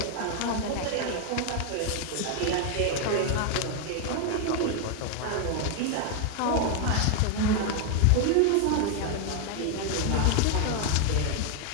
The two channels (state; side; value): different; both; correlation 0.00